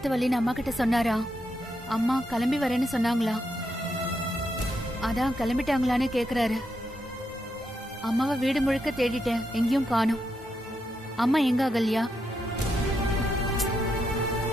வலின்னு அம்மா கிட்ட சொன்னாரா? அம்மா கிளம்பி வரேன்னு சொன்னாங்களா? அதான் கிளம்பிட்டாங்களான்னு கேக்குறாரு. அம்மாவை வீடு முழுக்க தேடிட்டேன், எங்கேயும் காணோம். அம்மா எங்க அகல்யா?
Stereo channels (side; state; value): both; normal; correlation 0.82